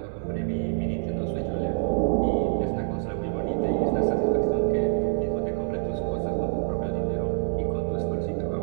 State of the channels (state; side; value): silent; left; 60 dB below the other